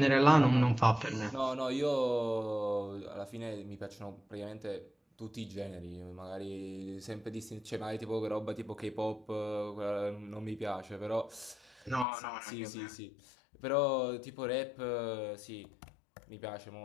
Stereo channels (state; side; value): drops out; right; at 12.1 s